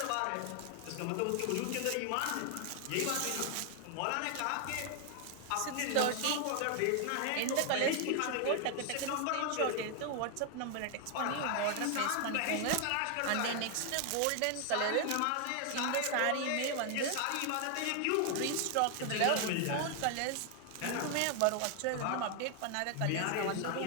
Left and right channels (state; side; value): different; both; correlation 0.00